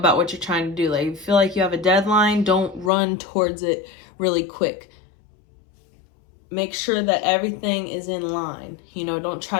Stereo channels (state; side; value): drops out; right; at 2.9 s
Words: what you're trying to do. Like, if you feel like you have a deadline, don't run towards it really quick. Make sure that everything is in line. You know, don't try